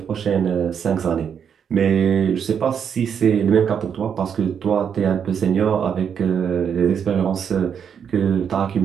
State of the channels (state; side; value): quieter; left; 7.6 dB